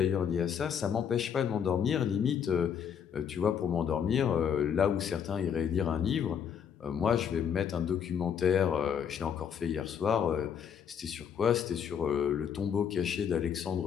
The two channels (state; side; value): quieter; right; 7.9 dB